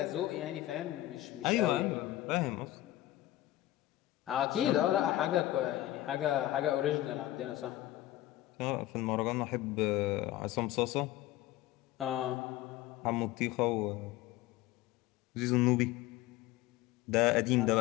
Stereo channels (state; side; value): quieter; right; 15.4 dB